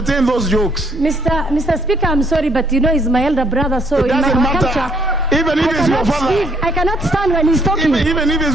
those jokes. Mr. Speaker, I'm sorry, but you know he's my elder brother, so it doesn't matter. Even if it's your father. I cannot stand when he's talking. Even if it's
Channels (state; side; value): normal; both; correlation 0.67